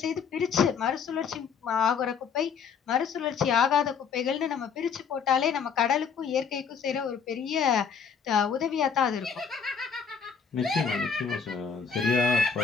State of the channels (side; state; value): right; quieter; 6.4 dB